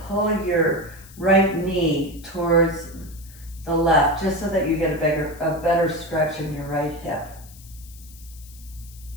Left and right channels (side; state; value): left; noise; hiss, 21 dB below the sound